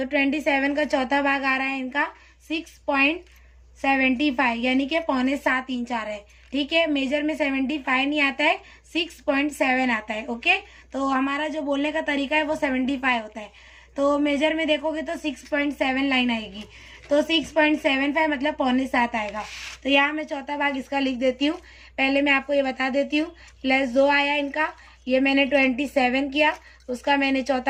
27 का चौथा भाग आ रहा है इनका 6.75, यानी कि 6.75 इंच आ रहा है। ठीक है, मेजर में 75 नहीं आता है, 6.7 आता है। ओके, तो हमारा जो बोलने का तरीका है वो 75 होता है, तो मेजर में देखोगे तो 6.7 लाइन आएगी, तो 6.75 मतलब 6.75 आएगा। तो यहाँ मैं चौथा भाग इसका लिख देती हूँ। पहले मैं आपको ये बता देती हूँ, +2 आया इनका, ये मैंने 27 किया, उसका मैंने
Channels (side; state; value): both; identical; correlation 1.00